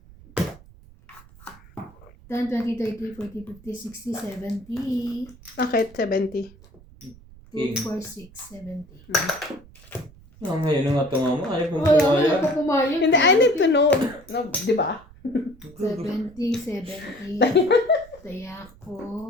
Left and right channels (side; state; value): right; noise; rumble, 23 dB below the sound